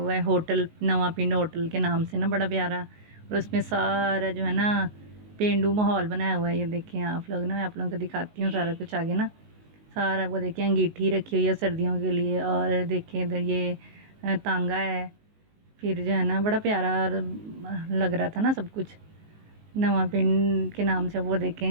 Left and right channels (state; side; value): late; left; 19 ms